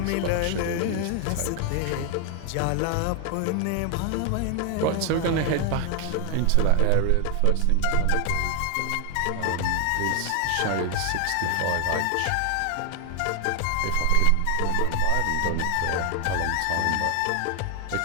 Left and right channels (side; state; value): both; different; correlation 0.00